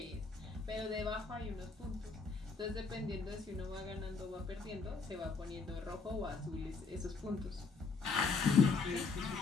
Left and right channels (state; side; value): quieter; right; 4.4 dB